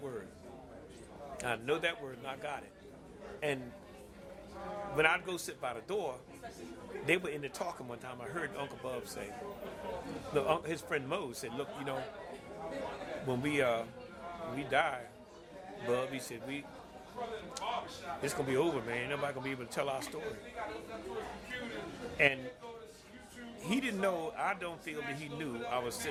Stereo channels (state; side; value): identical; both; correlation 1.00